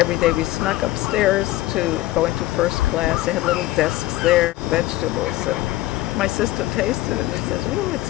day we snuck upstairs to go into first class. They had little desks there, vegetables, and my sister tasted it and says, oh, it's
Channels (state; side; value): quieter; right; 16.9 dB